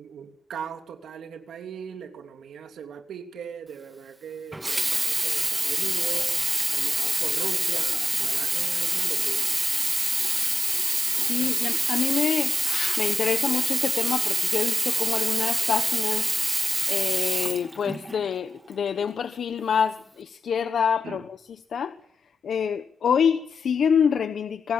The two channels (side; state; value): both; normal; correlation 0.88